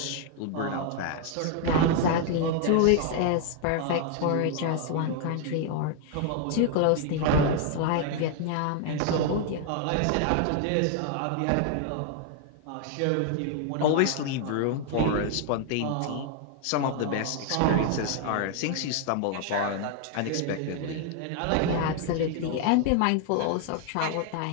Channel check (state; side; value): different; both; correlation 0.00